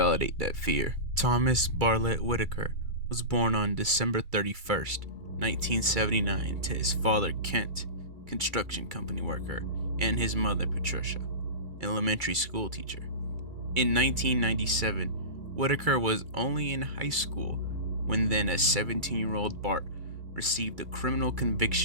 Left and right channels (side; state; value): left; late; 2.3 ms